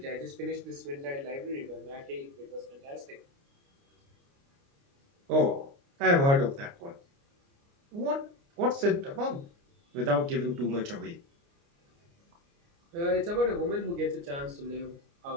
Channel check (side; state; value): left; late; 29 ms